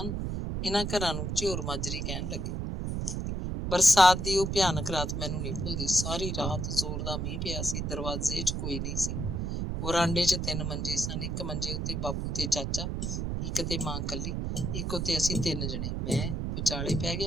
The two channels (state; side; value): noise; right; rumble, 2 dB below the sound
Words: ਇਹਨਾਂ ਘਰਾਂ ਨੂੰ ਝਿਉਰ ਮਾਜਰੀ ਕਹਿਣ ਲੱਗੇ। ਬਰਸਾਤ ਦੀ ਉਹ ਭਿਆਨਕ ਰਾਤ ਮੈਨੂੰ ਨਹੀਂ ਭੁੱਲਦੀ। ਸਾਰੀ ਰਾਤ ਜ਼ੋਰ ਦਾ ਮੀਂਹ ਪਿਆ ਸੀ। ਦਰਵਾਜ਼ੇ 'ਚ ਕੋਈ ਨਹੀਂ ਸੀ। ਵਰਾਂਡੇ 'ਚ 3 ਮੰਜੇ ਸਨ। ਇੱਕ ਮੰਜੇ ਉੱਤੇ ਬਾਪੂ ਤੇ ਚਾਚਾ, ਇੱਕ ਤੇ ਮਾਂ ਕੱਲੀ, ਇੱਕ ਉੱਤੇ ਅਸੀਂ 3 ਜਣੇ। ਮੈਂ ਵਿਚਾਲੇ ਪੈ